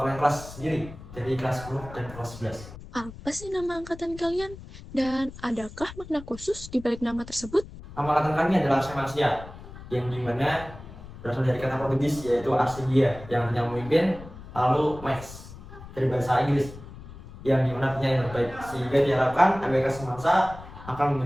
kelas sendiri dari kelas 10 dan kelas 11. Apa sih nama angkatan kalian? Dan adakah makna khusus di balik nama tersebut? Nama angkatan kami adalah Semasya, yang dimana berasal dari kata Portugis yaitu Arsigia, yang artinya memimpin, lalu Max dari bahasa Inggris, yang dimana artinya yang terbaik. Sehingga diharapkan MPK Semasya akan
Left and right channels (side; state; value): left; noise; rumble, 15 dB below the sound